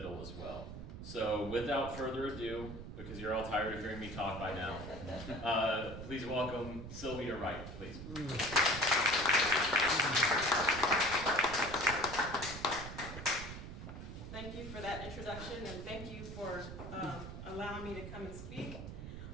as well. So without further ado, because you're all tired of hearing me talk by now, please welcome Sylvia Wright, please. Thank you for that introduction, and thank you for allowing me to come and speak.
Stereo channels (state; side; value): noise; right; rumble, 10 dB below the sound